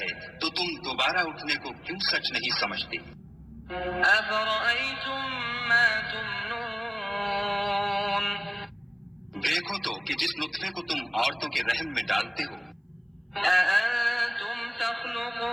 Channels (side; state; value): both; identical; correlation 1.00